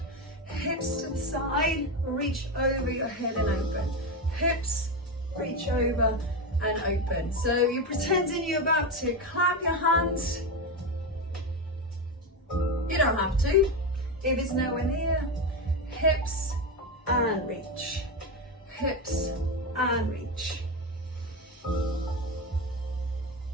Hips to the side, reach over your head and open. Hips, reach over and open. So you're pretending you're about to clap your hands. You don't have to. If it's nowhere near, hips and reach. Hips and reach.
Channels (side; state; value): both; normal; correlation 0.14